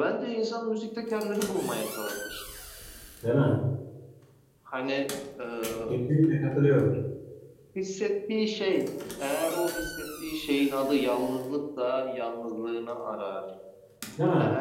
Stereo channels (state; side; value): identical; both; correlation 1.00